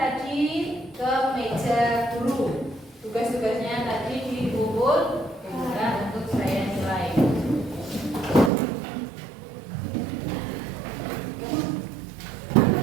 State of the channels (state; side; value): drops out; left; at 8.5 s